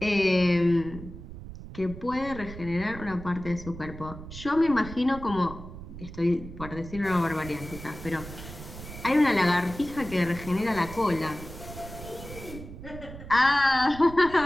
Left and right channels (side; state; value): right; noise; rumble, 13 dB below the sound